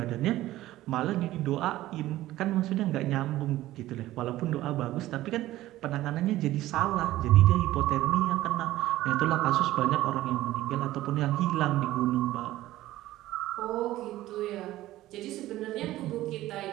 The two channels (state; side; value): quieter; left; 15.6 dB